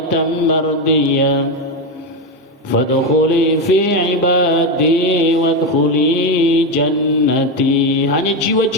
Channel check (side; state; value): both; normal; correlation 0.11